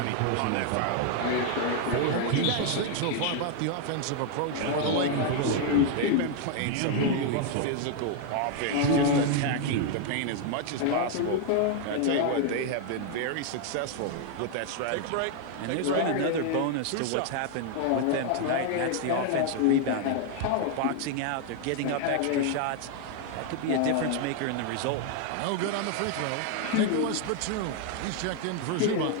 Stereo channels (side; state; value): both; different; correlation 0.00